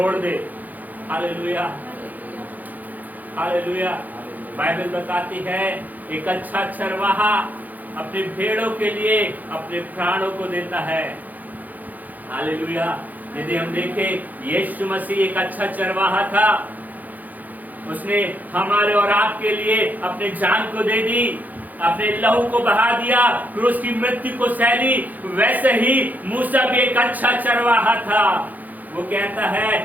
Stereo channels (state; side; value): late; left; 0.082 ms